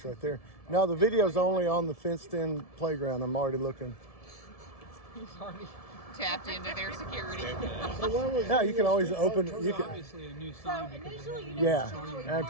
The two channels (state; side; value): late; right; 1.7 ms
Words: right there. No, the video's only on the fenced-in playground. I'm already looking. He's already tapped into their security. So when was Yeah, the you can always street open. car You can. Obviously a new So sign because of initially, how you we- know, Yeah, Charlie Park,